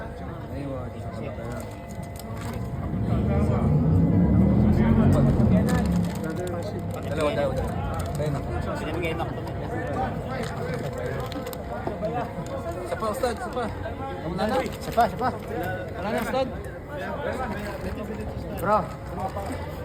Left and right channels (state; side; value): identical; both; correlation 1.00